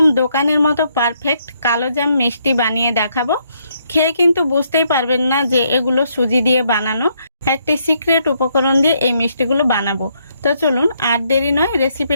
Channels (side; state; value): both; inverted; correlation -0.73